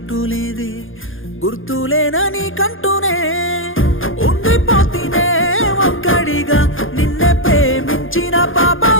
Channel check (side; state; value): right; late; 0.59 ms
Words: లేదే, గుర్తులేనని కంటూనే ఉండిపోతేనే ఒక్కడిగా. నిన్నే ప్రేమించిన